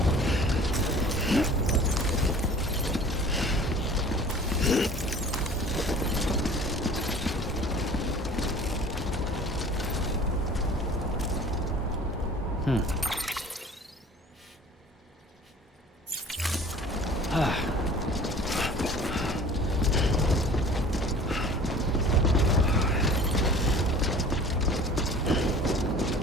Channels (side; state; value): both; normal; correlation 0.45